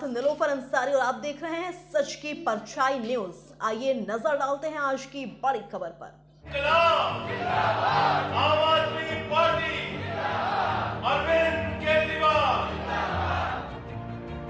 निलोफर अंसारी और आप देख रहे हैं सच की परछाई न्यूज। आइए नजर डालते हैं आज की बड़ी खबर पर। आम आदमी पार्टी, अरविंद केजरीवाल,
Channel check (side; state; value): both; identical; correlation 1.00